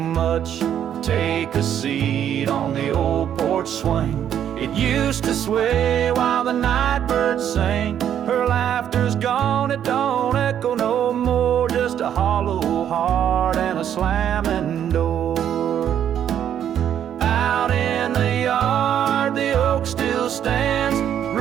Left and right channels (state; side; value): quieter; left; 9.7 dB